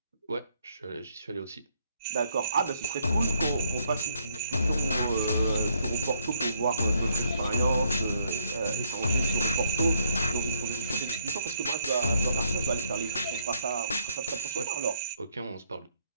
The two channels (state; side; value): inverted; both; correlation -0.70